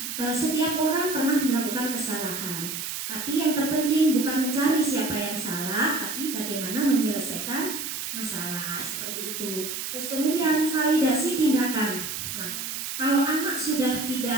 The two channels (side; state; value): right; noise; hiss, 5 dB below the sound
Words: Setiap orang pernah melakukan kesalahan, tapi yang terpenting bukan mencari siapa yang salah, tapi bagaimana menyelesaikan masalah, seperti itu. Terus kemudian validasi tindakan. Nah, kalau anak sudah